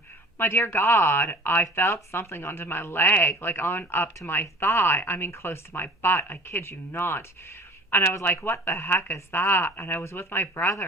My dear God, I felt something under my leg, like on up to my thigh. I mean, close to my butt. I kid you not. And I was like, what the heck is that? And I was with my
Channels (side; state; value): both; normal; correlation 0.43